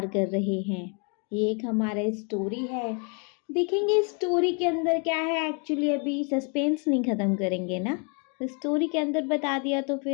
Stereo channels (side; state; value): right; quieter; 36.7 dB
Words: कर रहे हैं। ये एक हमारा स्टोरी है। देखेंगे स्टोरी के अंदर क्या है। एक्चुअली अभी सस्पेंस नहीं ख़त्म करेंगे ना, स्टोरी के अंदर बता दिया तो